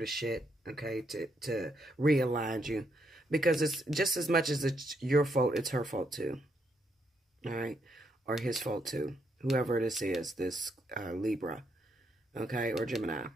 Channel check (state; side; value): normal; both; correlation 0.76